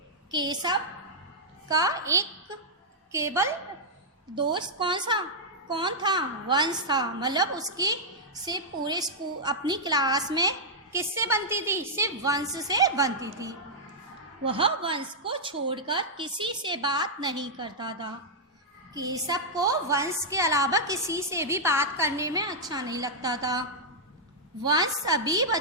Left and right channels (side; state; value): both; normal; correlation -0.07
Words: केशव का एक केवल दोस्त कौन था? वंश था। मतलब उसकी सिर्फ पूरे स्कूल, अपनी क्लास में किससे बनती थी? सिर्फ वंश से बनती थी। वह वंश को छोड़कर किसी से बात नहीं करता था। केशव को वंश के अलावा किसी से भी बात करने में अच्छा नहीं लगता था। वंश सभी